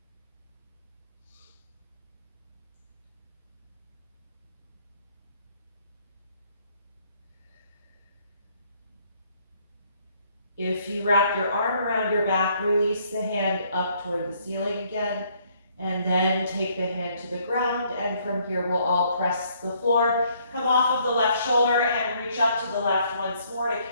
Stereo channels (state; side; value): inverted; both; correlation -0.66